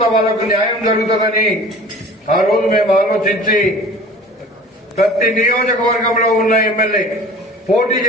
వాళ్లకు న్యాయం జరుగుతుందని ఆ రోజు మేము ఆలోచించి ప్రతి నియోజకవర్గంలో ఉన్న ఎమ్మెల్యే పోటీ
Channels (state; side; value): normal; both; correlation 0.43